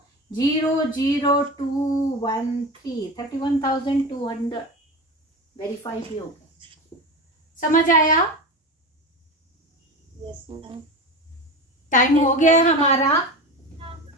00213 31,200 वेरीफाई भी हो गया। समझ आया? Yes ma'am. टाइम हो गया हमारा।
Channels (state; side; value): normal; both; correlation 0.26